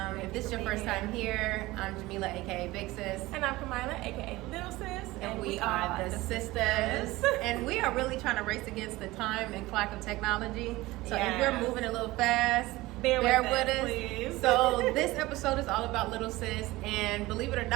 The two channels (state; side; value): quieter; left; 19.3 dB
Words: if this is your first time here, I'm Jamila aka Big Sis. And I'm Kamila aka Lil Sis. And we are the sisters. And we are really trying to race against the time and clock of technology. So if we're moving a little fast, bear with us. Please. So this episode is all about Lil Sis, and believe it or